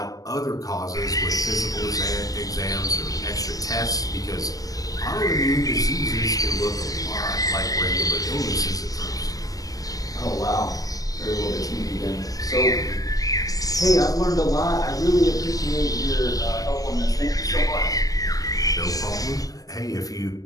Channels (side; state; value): right; late; 0.18 ms